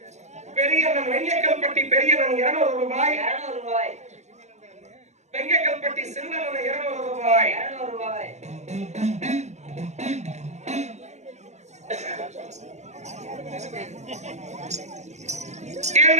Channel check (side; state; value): left; late; 0.33 ms